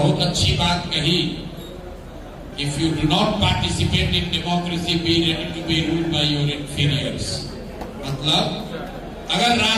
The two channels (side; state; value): both; identical; correlation 1.00